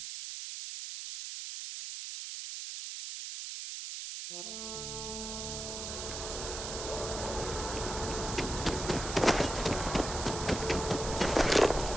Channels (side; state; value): right; noise; hiss, 6 dB below the sound